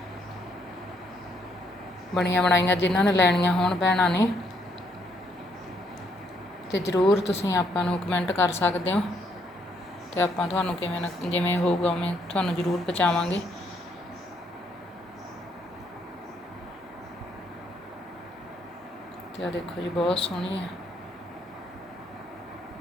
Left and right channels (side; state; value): both; normal; correlation 0.71